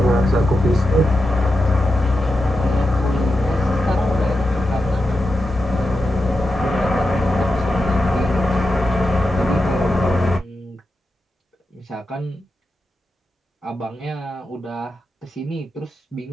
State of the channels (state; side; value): normal; both; correlation 0.89